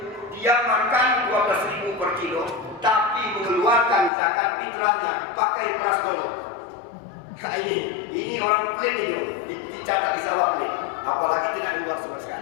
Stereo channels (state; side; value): drops out; right; at 4.1 s